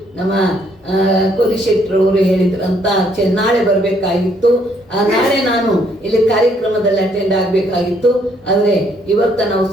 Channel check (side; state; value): both; normal; correlation 0.68